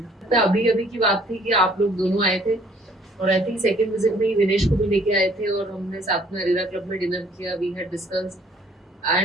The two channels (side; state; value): both; normal; correlation 0.59